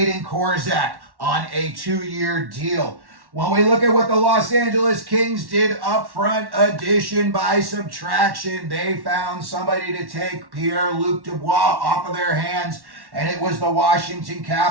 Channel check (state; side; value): late; left; 1.1 ms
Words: Korzak on a 2-year deal. When we look at what the Los Angeles Kings did up front, addition by subtraction, they found somebody to take Pierre-Luc Dubois off of their hands, and it was the Washington